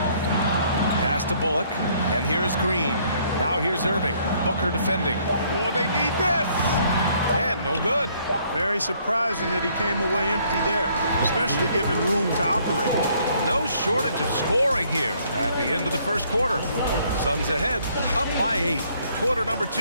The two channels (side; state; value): both; inverted; correlation -0.65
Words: Pass to Bullock, and here's Green. Now here's Irving. Booker defending. Oh, they need this! And no good. Very surprising that he came away empty there, especially given room to operate. No shortage of scoring here at the end of the first quarter. Suns ahead, up by 8. Quarter number